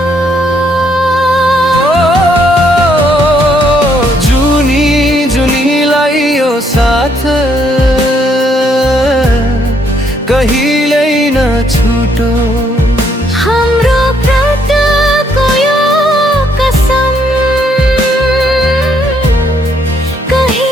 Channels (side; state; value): both; normal; correlation 0.70